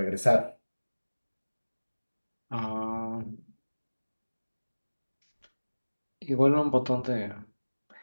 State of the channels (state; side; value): inverted; both; correlation -1.00